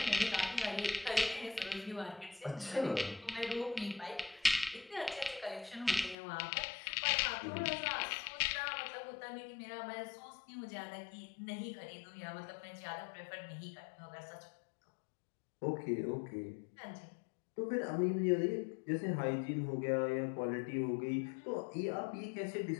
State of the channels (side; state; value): right; drops out; at 6.2 s